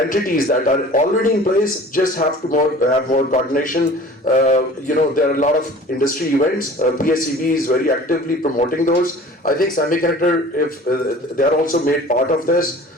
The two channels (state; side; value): normal; both; correlation 0.44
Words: that are already in place, just have to have more coordination. There are a lot of industry events. PSEB is very actively promoting those. I think semiconductor, if they are also made part of this